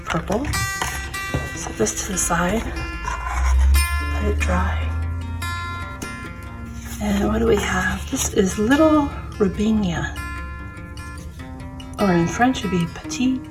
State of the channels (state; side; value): identical; both; correlation 1.00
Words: purple. Set this to the side, let it dry. And what do we have? This is Little Rabinia, or in French it would be Petit